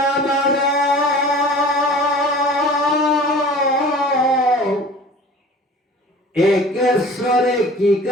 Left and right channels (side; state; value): both; normal; correlation 0.43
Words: আমাৰ একেশ্বৰে কি